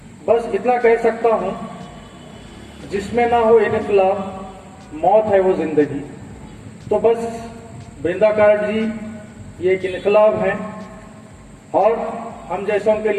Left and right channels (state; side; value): identical; both; correlation 1.00